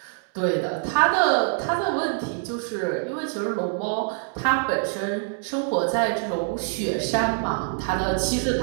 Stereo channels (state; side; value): silent; left; 62 dB below the other